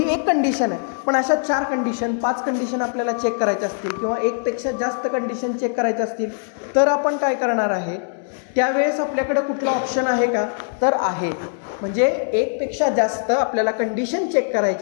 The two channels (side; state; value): right; silent; 64 dB below the other